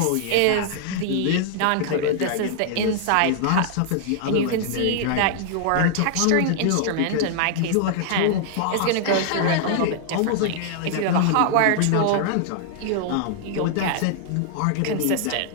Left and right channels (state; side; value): different; both; correlation -0.01